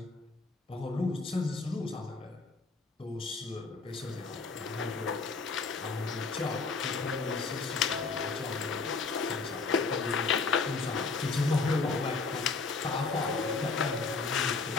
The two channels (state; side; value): quieter; right; 4.3 dB